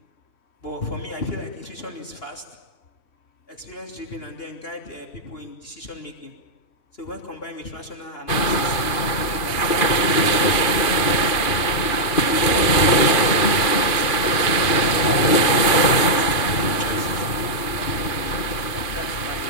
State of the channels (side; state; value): right; late; 2.5 ms